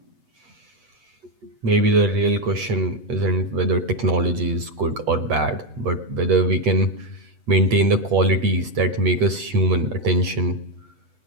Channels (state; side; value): late; left; 8.0 ms